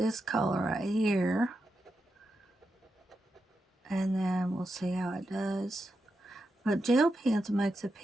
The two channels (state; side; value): normal; both; correlation 0.87